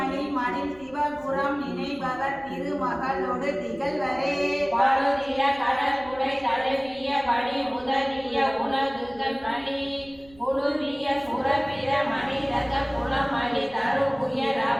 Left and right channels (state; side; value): noise; right; rumble, 25 dB below the sound